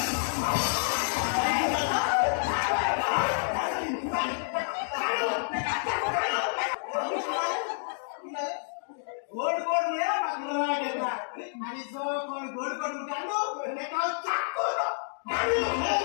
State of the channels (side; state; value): right; silent; digital silence